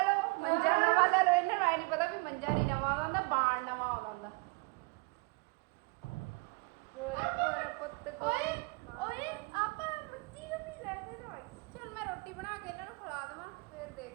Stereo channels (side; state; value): left; quieter; 28.6 dB